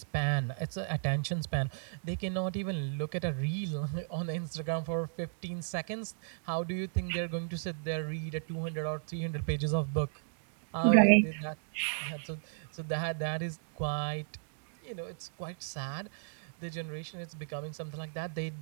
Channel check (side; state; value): left; silent; digital silence